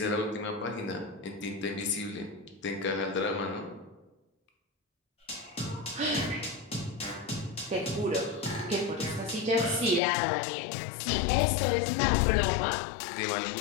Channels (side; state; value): right; drops out; at 10.0 s